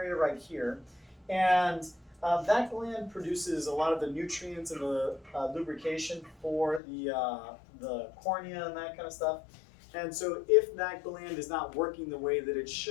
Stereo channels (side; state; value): right; drops out; at 6.8 s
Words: right here. And that gland produces a lot of the nutrients and the lubrication for the cornea and that kind of stuff. And so if that gland is not working the way that it